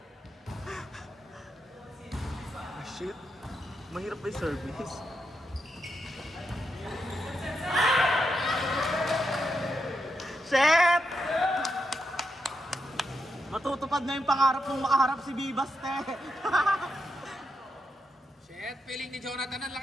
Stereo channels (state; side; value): normal; both; correlation 0.84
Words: Ah, shit. Mahirap ba yung service? Shit! Matutupad na yung pangarap mong makaharap si Bibas, te. Shit, feeling ni Jonathan ang